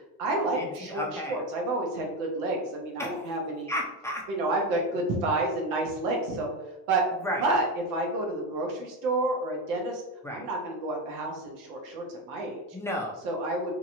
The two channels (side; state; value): both; normal; correlation 0.16